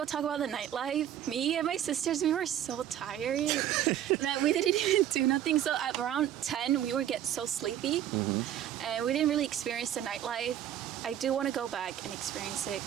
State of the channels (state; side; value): quieter; left; 11.1 dB